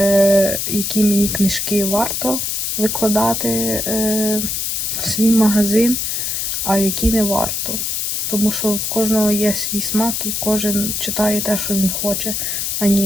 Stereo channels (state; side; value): noise; left; hiss, 1 dB below the sound